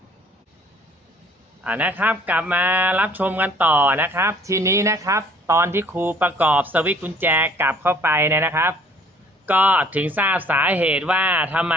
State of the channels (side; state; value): both; normal; correlation 0.56